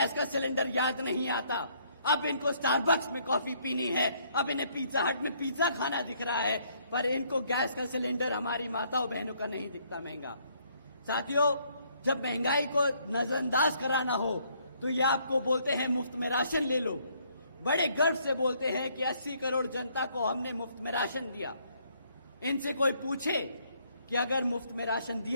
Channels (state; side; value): inverted; both; correlation -0.67